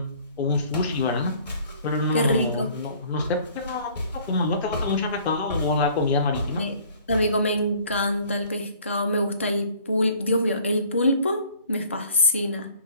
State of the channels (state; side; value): inverted; both; correlation -0.54